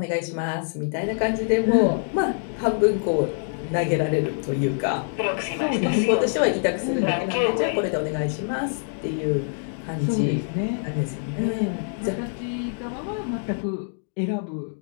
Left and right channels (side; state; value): right; silent; 62 dB below the other